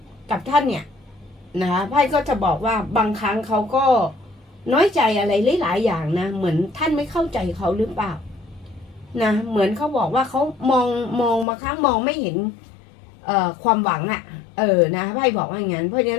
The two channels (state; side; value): drops out; right; at 11.5 s